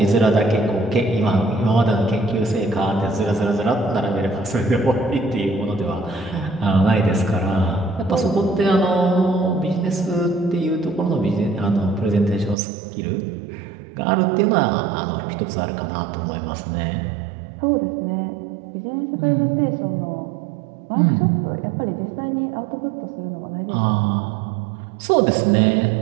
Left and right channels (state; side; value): drops out; left; at 12.6 s